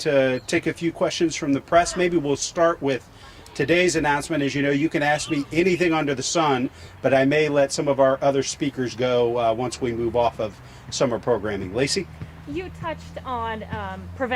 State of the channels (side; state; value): both; identical; correlation 1.00